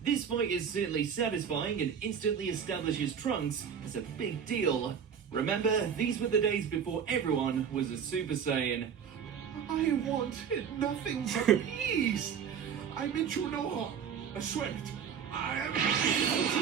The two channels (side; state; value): left; quieter; 7.5 dB